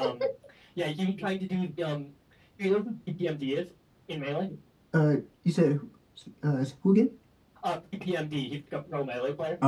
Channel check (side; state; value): both; identical; correlation 1.00